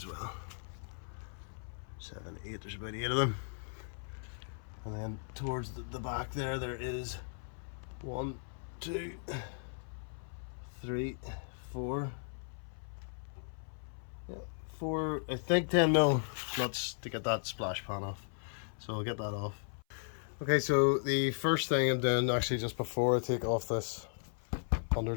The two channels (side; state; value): right; silent; 53 dB below the other